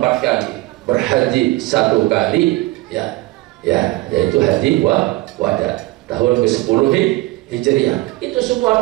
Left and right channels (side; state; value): left; quieter; 19.9 dB